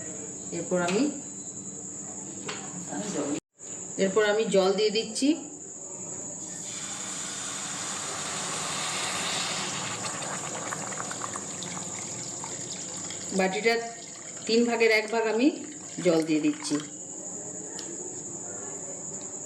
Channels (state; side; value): identical; both; correlation 1.00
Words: এরপর আমি জল দিয়ে দিচ্ছি। বাটিটার 3 ভাগের 1 ভাগ আমি জল দিয়ে দিচ্ছি।